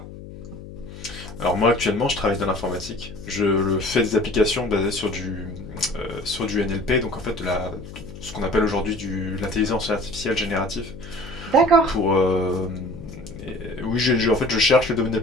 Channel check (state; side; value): noise; left; hum, 14 dB below the sound